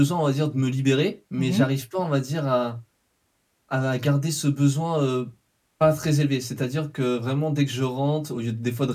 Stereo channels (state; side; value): identical; both; correlation 1.00